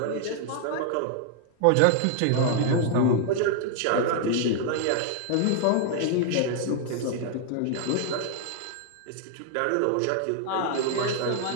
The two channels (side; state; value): both; different; correlation 0.00